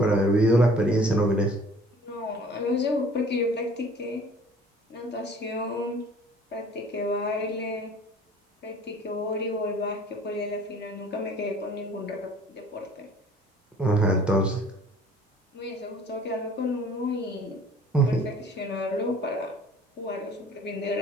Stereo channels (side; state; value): both; normal; correlation 0.50